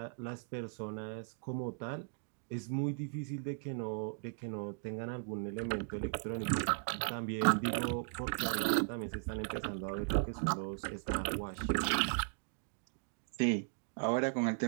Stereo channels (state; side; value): silent; left; digital silence